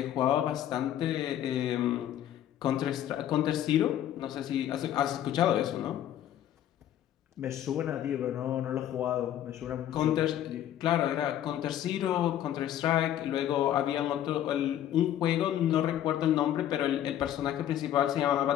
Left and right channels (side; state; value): right; quieter; 11.4 dB